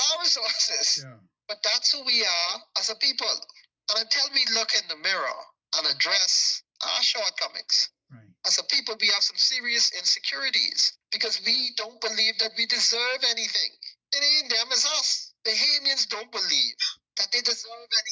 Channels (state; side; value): identical; both; correlation 1.00